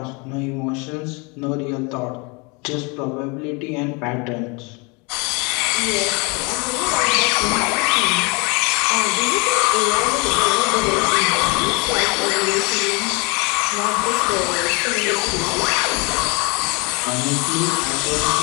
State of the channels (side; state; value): right; quieter; 29.8 dB